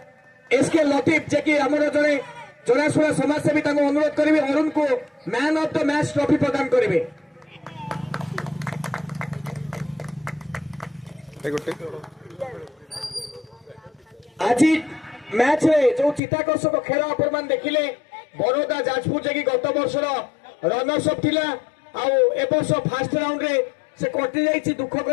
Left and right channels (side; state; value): right; drops out; at 16.2 s